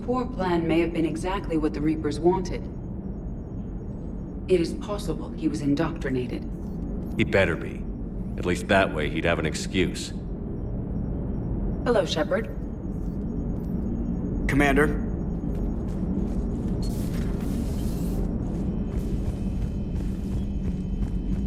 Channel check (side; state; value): both; identical; correlation 1.00